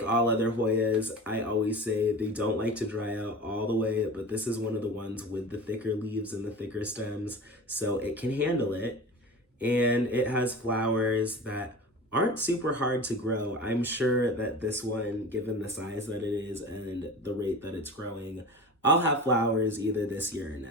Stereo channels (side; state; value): both; normal; correlation 0.34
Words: all other Hoyas, I always say they don't like to dry out all the way, but this is one of the ones with the thicker leaves and the thicker stems, so it can handle it. And it has flowers that aren't super hard to grow. I'm sure that this one, given the size that it is and the rate that it's growing, I'll have flowers either this year or